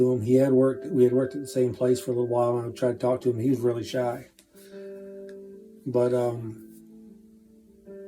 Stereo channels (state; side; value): identical; both; correlation 1.00